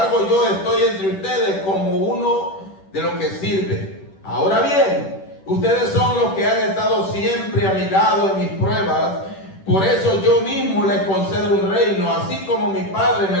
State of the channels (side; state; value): right; late; 10 ms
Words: yo estoy entre ustedes como uno de los que sirve. Ahora bien, ustedes son los que han estado siempre a mi lado en mis pruebas. Por eso yo mismo les concedo un reino, así como mi Padre me